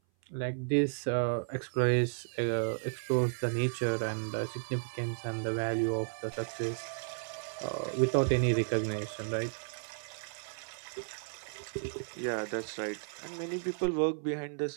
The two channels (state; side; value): silent; left; 55 dB below the other